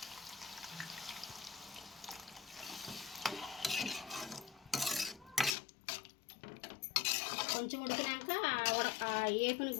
కొంచెం ఉడికినాక ఏపుని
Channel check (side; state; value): right; drops out; at 5.6 s